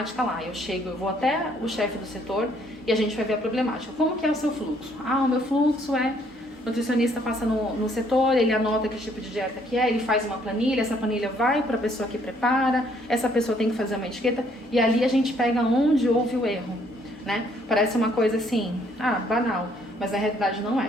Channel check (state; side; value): normal; both; correlation 0.66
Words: lá. Eu vou até o chefe do setor e a gente vai ver a problemática. Como que é o seu fluxo? Ah, o meu fluxo é... O nutricionista passa no setor, ele anota que tipo de dieta que é, ele faz uma planilha, essa planilha vai para a pessoa que prepara, essa pessoa tem que fazer uma etiqueta, e ali a gente pega onde houve o erro, né? Parece uma coisa assim, banal, mas na realidade não